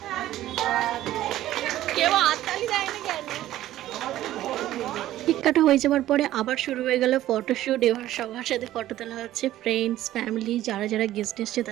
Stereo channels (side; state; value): left; quieter; 14.0 dB